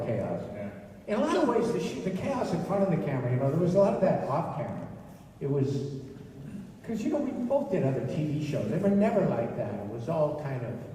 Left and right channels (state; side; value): identical; both; correlation 1.00